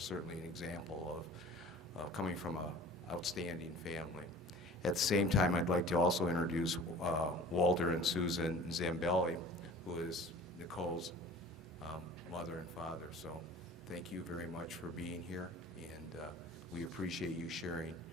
an example of coming from an outstanding family. At the same time, I'd like to also introduce Walter and Susan Zambelli, who is Nicole's mother and father. So thank you very much for being here, and we appreciate you sharing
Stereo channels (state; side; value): normal; both; correlation 0.44